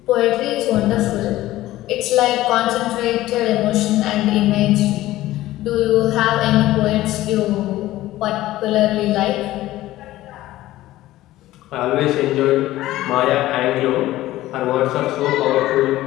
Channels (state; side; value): quieter; right; 15.8 dB